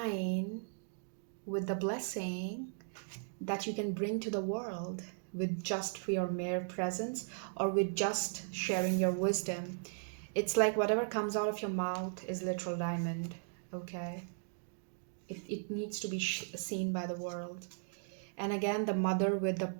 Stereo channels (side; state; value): left; silent; digital silence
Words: with the blessing that you can bring to the world with just for your mere presence or with just sharing your wisdom. It's like whatever comes out of your mouth is literal diamond, okay? It needs to be seen by the world. And again, the mother with the